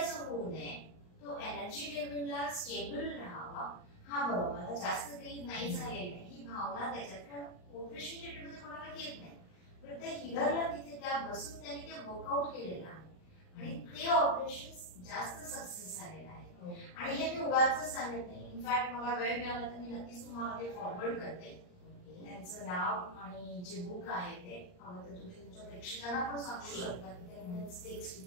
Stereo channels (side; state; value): right; late; 39 ms